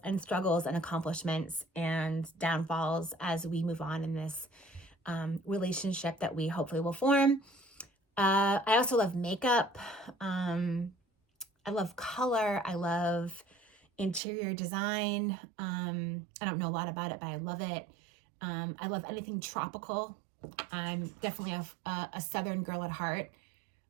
and struggles and accomplishments and downfalls as we move on in this relationship that we hopefully will form. I also love makeup. I love color. I love interior design. I don't know a lot about it, but I love it. I love anything tropical. I'm definitely a Southern girl at heart.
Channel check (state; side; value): drops out; left; at 14.2 s